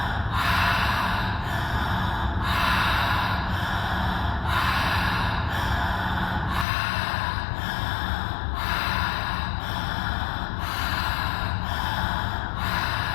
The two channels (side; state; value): right; drops out; at 6.7 s